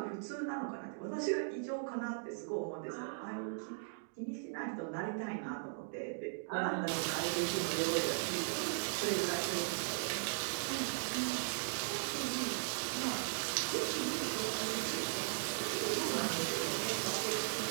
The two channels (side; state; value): left; silent; digital silence